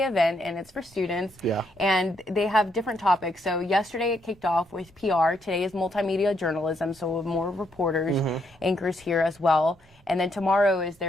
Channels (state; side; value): normal; both; correlation 0.75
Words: event, and it's for students. Yeah. And they have different topics. So yesterday it kicked off with PR. Today is multimedia journalism, so more reporters, anchors here as well. And then tomorrow is